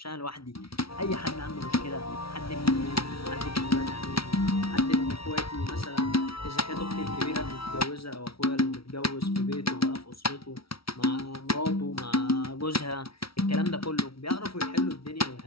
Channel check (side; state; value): right; late; 0.75 ms